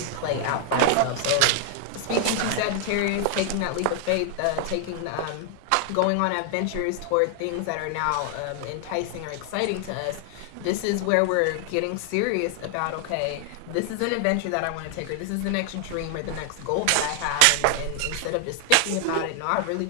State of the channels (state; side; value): different; both; correlation 0.00